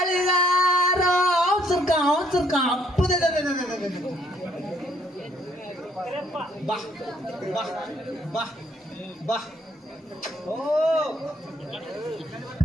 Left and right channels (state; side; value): normal; both; correlation 0.66